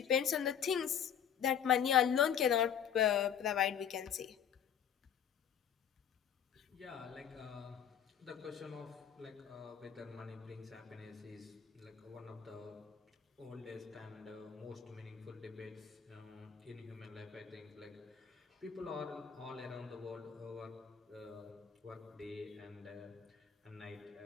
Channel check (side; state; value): right; quieter; 8.6 dB